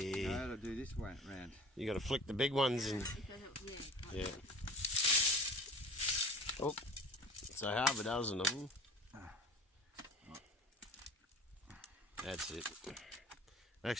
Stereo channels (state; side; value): normal; both; correlation 0.40